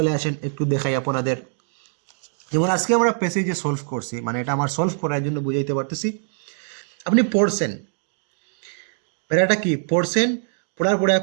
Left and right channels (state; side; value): silent; left; digital silence